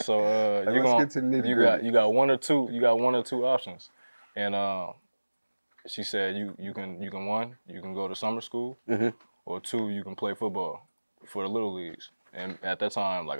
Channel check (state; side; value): inverted; both; correlation -1.00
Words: you got one or two options. And she said you can one, you can go to summer school, or two, you can play football for the little leagues. And at that time, like